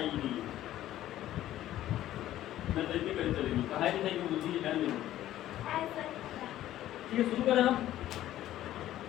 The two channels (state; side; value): quieter; right; 13.4 dB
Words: नहीं। मैं तो इतनी कहीं चलेगी कहा ही नहीं कि बुद्धि है नहीं। ठीक है शुरू करें हम।